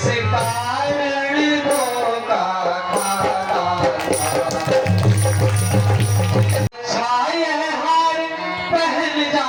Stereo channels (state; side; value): identical; both; correlation 1.00